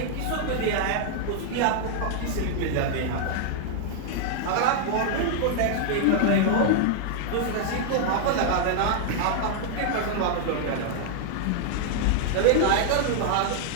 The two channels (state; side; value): different; both; correlation -0.01